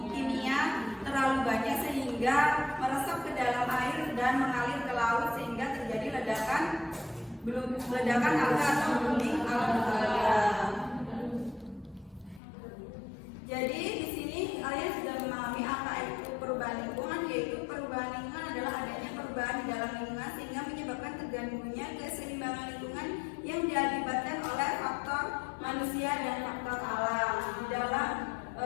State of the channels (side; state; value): right; drops out; at 12.4 s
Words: kimia terlalu banyak sehingga meresap ke dalam air dan mengalir ke laut sehingga terjadi ledakan alga atau blooming alga. Jadi di sini kalian sudah memahami apa itu perubahan lingkungan, yaitu perubahan lingkungan adalah adanya perubahan di dalam lingkungan sehingga menyebabkan terganggunya keseimbangan lingkungan yang diakibatkan oleh faktor manusia dan faktor alam. Di dalam